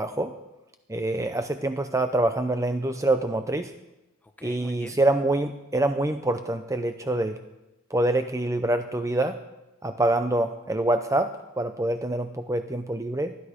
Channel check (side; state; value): both; normal; correlation 0.71